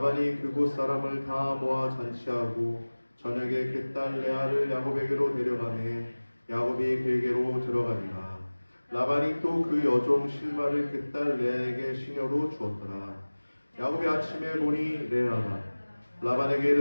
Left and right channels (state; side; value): inverted; both; correlation -1.00